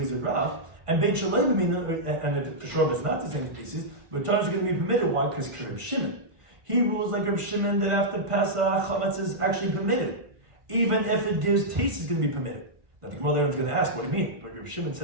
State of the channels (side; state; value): left; late; 1.5 ms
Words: with Rav, and bein shaloi b'minan, and for sure it's not the same species, but times are going to be permitted. Why? Because Rabbi Shimon, he rules like Rabbi Shimon that after Pesach, chametz is actually permitted, even if it gives taste, it's going to be permitted. Now the Gemara later is going to ask, what do you mean? But Rabbi Shimon